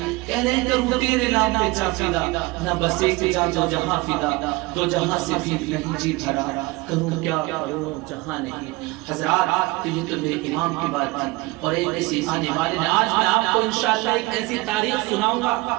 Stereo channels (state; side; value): quieter; left; 22.0 dB